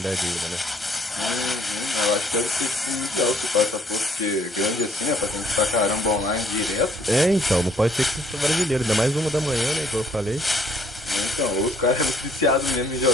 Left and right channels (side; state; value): both; normal; correlation 0.63